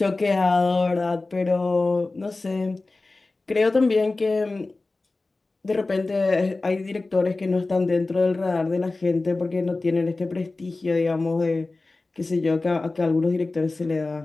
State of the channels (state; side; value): quieter; right; 3.3 dB